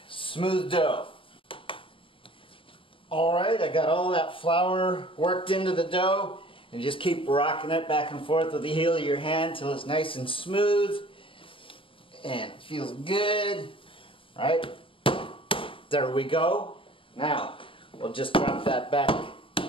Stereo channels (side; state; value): right; late; 0.25 ms